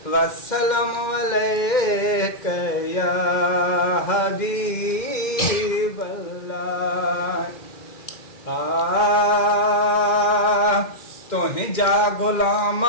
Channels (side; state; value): right; late; 2.1 ms